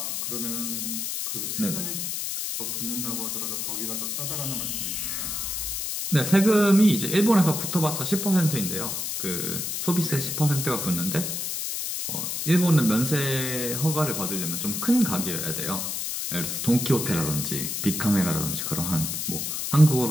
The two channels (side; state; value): left; noise; hiss, 3 dB below the sound